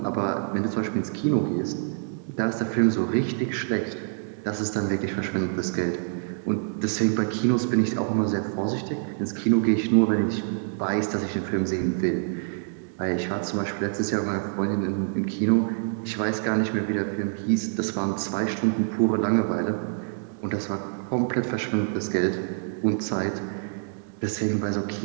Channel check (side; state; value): left; silent; digital silence